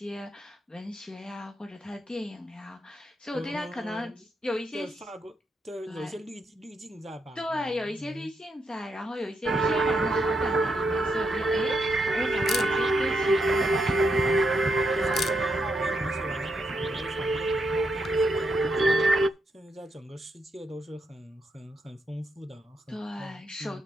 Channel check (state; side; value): normal; both; correlation 0.81